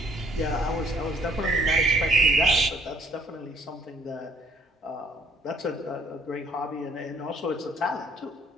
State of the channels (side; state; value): both; normal; correlation 0.61